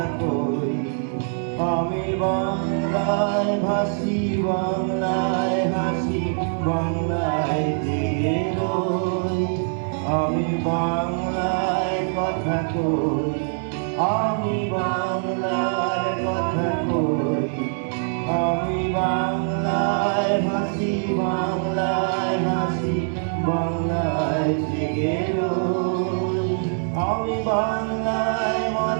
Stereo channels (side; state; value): left; silent; 63 dB below the other